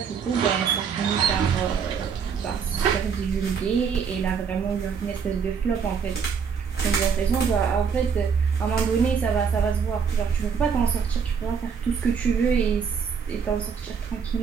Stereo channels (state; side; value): quieter; left; 6.4 dB